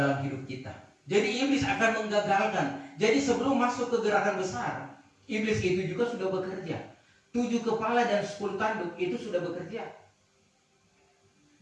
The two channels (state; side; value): identical; both; correlation 1.00